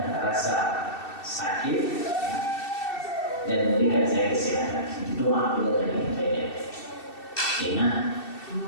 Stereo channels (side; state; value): right; late; 2.7 ms